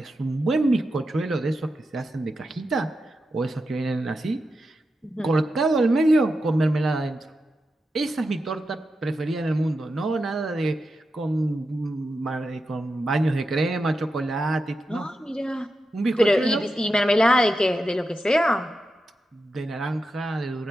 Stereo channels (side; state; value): both; normal; correlation 0.89